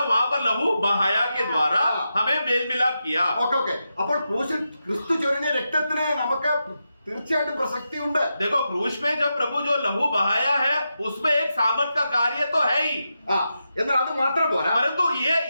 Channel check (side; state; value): both; inverted; correlation -0.88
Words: वहां पर लहू बहाया के द्वारा हमें मेल मिलाप किया. ഓക്കെ. അപ്പോൾ ക്രൂശിൽ ക്രിസ്തു ചൊരിഞ്ഞ രക്തത്തിന് നമുക്ക് തീർച്ചയായിട്ടും പ്രസക്തി ഉണ്ട്. देखो क्रूस में जब प्रभु जो लहू बहाया है उसमें एक सामर्थ का कार्य तो है ही, എന്നാൽ അത് മാത്രം പോരാ. परंतु